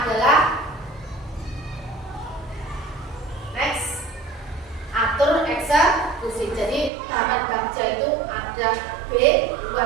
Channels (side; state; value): left; drops out; at 6.9 s